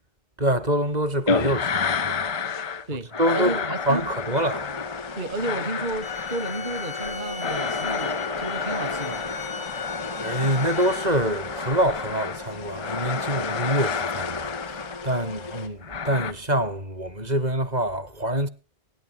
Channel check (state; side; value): late; left; 2.0 ms